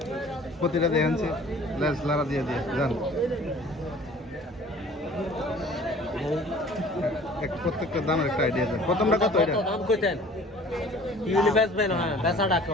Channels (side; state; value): both; normal; correlation 0.49